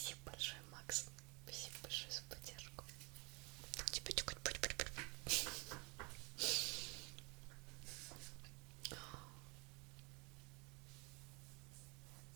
большое, Макс. Спасибо большое за поддержку. Тебе тюкать.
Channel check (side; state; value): left; quieter; 29.0 dB